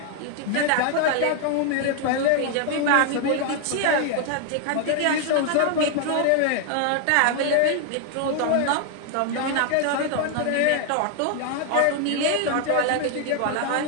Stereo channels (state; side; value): different; both; correlation 0.00